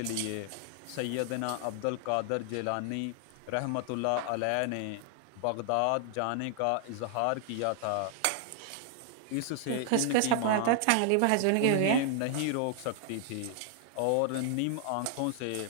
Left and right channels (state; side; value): different; both; correlation 0.00